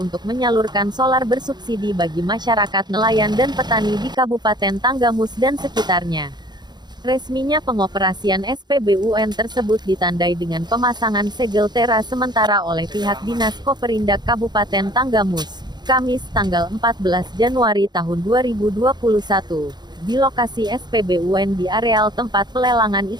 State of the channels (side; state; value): left; late; 0.21 ms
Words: menyalurkan solar bersubsidi bagi masyarakat nelayan dan petani di Kabupaten Tanggamus dan sekitarnya. Resminya pengoperasian SPBUN tersebut ditandai dengan pemasangan segel teras sementara oleh pihak Dinas Koperindak Kabupaten Tanggamus, Kamis tanggal 14 Januari tahun 2021, di lokasi SPBUN di areal tempat pelelangan